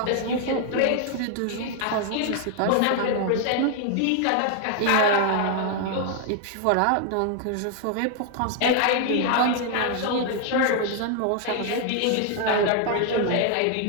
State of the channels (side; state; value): both; different; correlation 0.00